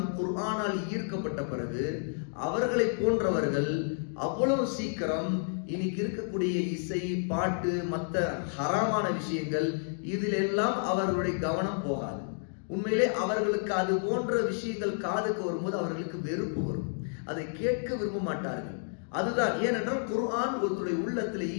குர்ஆனால் ஈர்க்கப்பட்ட பிறகு அவர்களை போன்றவர்கள் அவ்வளவு சீக்கிரம் இன்னைக்கு இருக்கக்கூடிய இசை, பாட்டு, மற்ற ஹராமான விஷயங்கள் இதிலெல்லாம் அவர்களுடைய கவனம் போகாது. உண்மையிலே அவர்களுக்கு அது போன்ற விஷயங்கள் காதுக்கு வரும்போது அவர்களுக்கு வெறுப்பு வரும். அதை கேட்க விரும்ப மாட்டார்கள். அதுதான் ஏனென்றால் குர்ஆன் ஒருத்தருடைய உள்ளத்துல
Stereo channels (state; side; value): silent; right; digital silence